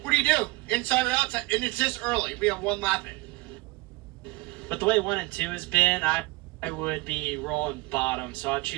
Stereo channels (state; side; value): quieter; left; 22.9 dB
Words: What do you do? Inside or outside? And it's this early. We have one lap in. But the way 1 and 2 has been, I would be rolling bottom, so I'd